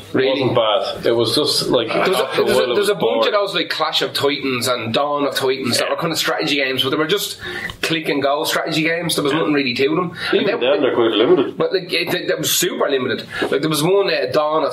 It wasn't bad. It was just like there's a bunch of those like Clash of Titans and Dawn of Titans that were kind of strategy games, but they were just click and go strategy games. There was nothing really to them. Even then, they're quite limited. But like it was super limited. Like there was one Dawn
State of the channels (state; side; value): identical; both; correlation 1.00